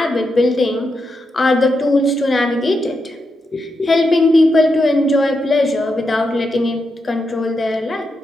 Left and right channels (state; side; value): normal; both; correlation 0.85